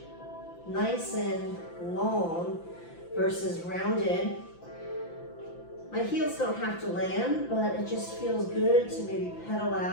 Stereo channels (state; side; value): late; right; 5.9 ms